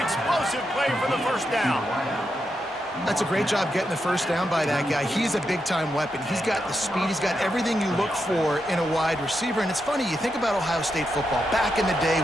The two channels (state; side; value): normal; both; correlation 0.85